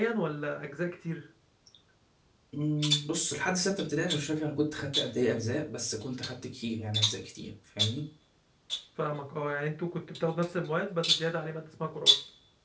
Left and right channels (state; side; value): identical; both; correlation 1.00